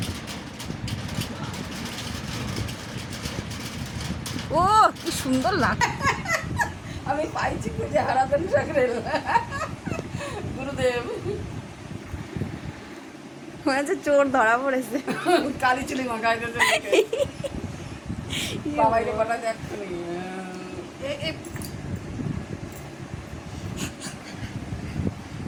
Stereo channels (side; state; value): both; identical; correlation 1.00